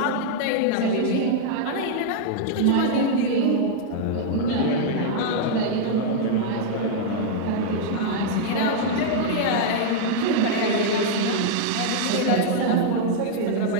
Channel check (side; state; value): both; different; correlation -0.01